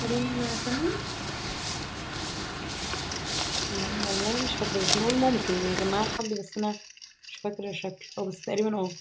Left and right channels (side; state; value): both; identical; correlation 1.00